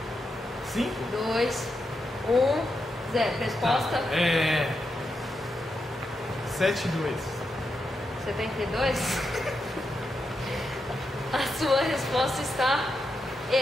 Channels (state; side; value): normal; both; correlation 0.85